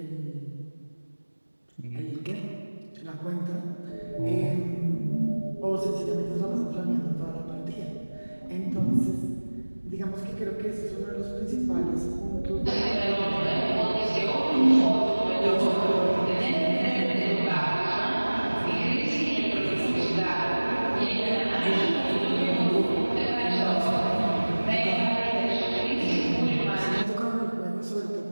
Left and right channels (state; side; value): inverted; both; correlation -1.00